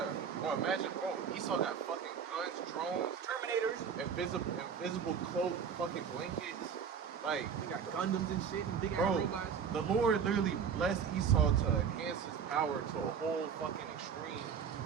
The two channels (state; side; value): quieter; left; 7.1 dB